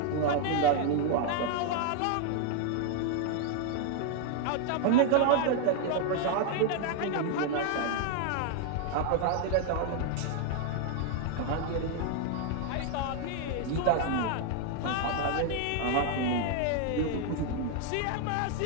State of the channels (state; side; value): different; both; correlation 0.00